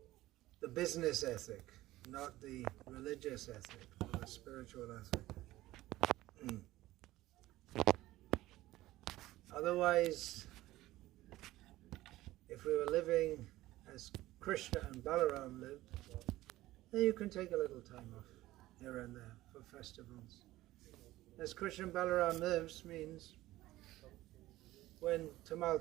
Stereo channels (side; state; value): left; quieter; 16.6 dB